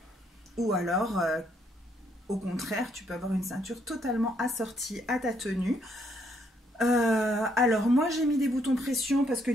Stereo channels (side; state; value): both; normal; correlation 0.71